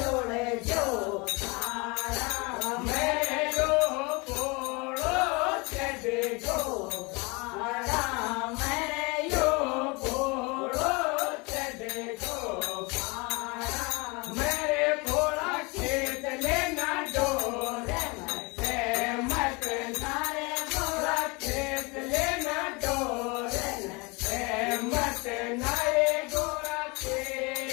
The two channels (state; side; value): quieter; right; 27.6 dB